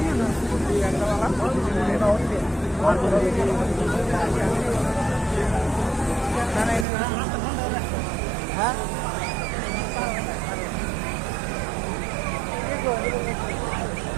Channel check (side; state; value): left; drops out; at 6.9 s